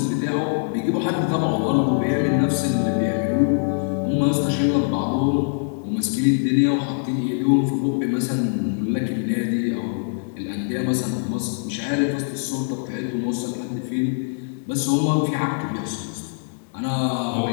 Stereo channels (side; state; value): right; silent; digital silence